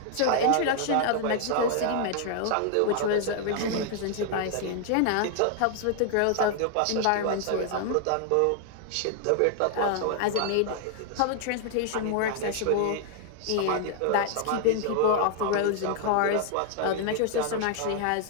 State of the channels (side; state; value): both; different; correlation 0.00